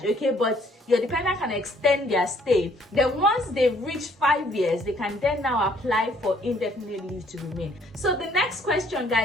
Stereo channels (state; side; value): normal; both; correlation 0.63